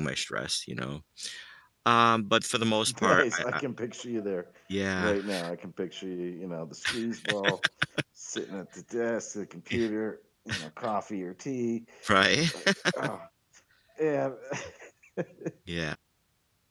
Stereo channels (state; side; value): identical; both; correlation 1.00